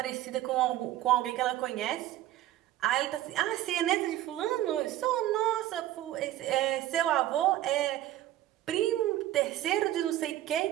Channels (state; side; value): quieter; left; 14.0 dB